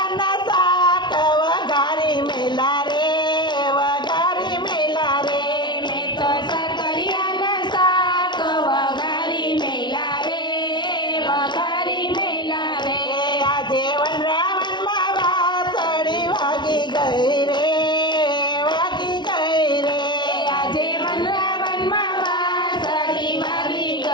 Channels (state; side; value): late; right; 0.22 ms